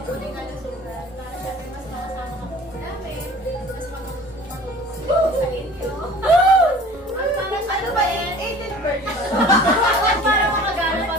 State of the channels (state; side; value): normal; both; correlation 0.45